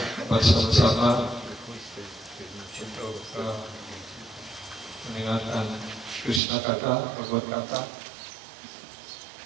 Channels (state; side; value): drops out; left; at 6.4 s